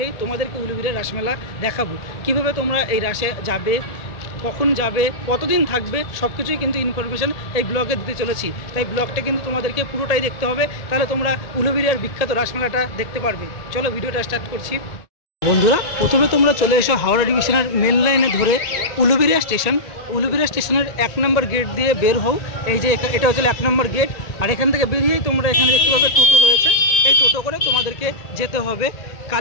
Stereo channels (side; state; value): right; late; 1.9 ms